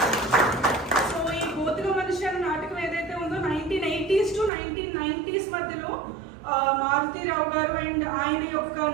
So ఈ గోతిక మనిషి అనే నాటకం ఏదైతే ఉందో 1980s to 1990s మధ్యలో మారుతీరావు గారు అండ్ ఆయన యొక్క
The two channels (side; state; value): left; drops out; at 4.5 s